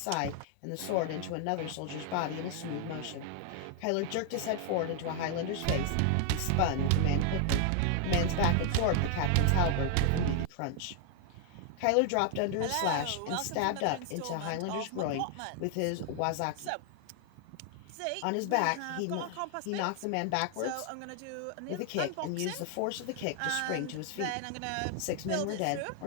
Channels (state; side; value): different; both; correlation 0.00